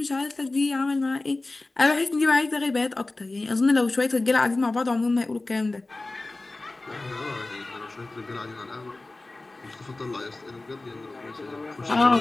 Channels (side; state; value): right; quieter; 3.1 dB